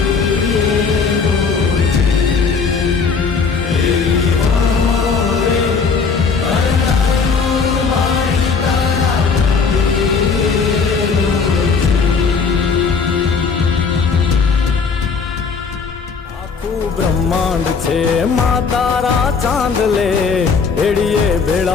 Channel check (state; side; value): quieter; right; 5.3 dB